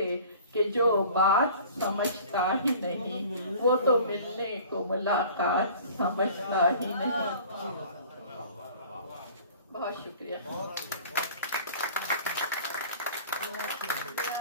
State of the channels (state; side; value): inverted; both; correlation -0.46